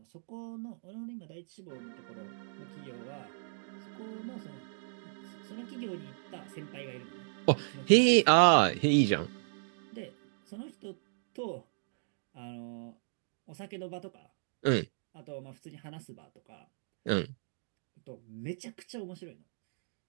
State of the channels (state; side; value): silent; left; digital silence